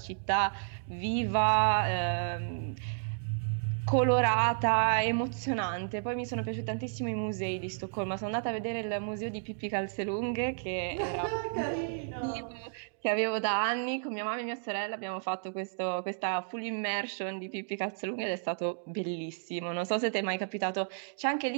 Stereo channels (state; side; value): silent; left; digital silence